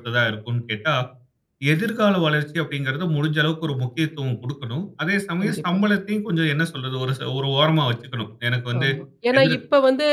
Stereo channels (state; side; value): identical; both; correlation 1.00